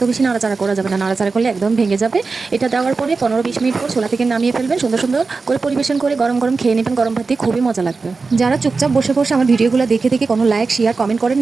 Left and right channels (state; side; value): quieter; left; 4.3 dB